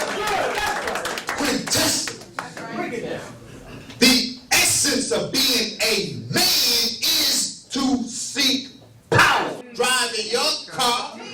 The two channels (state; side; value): identical; both; correlation 1.00